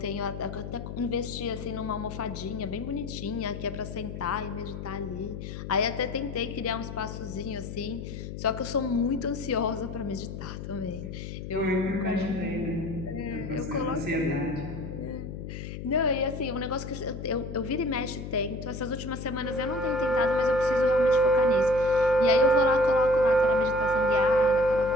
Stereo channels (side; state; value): left; noise; hum, 8 dB below the sound